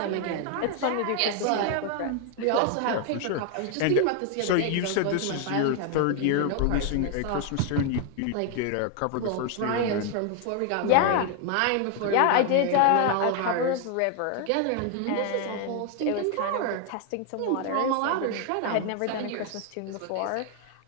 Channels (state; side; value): different; both; correlation 0.00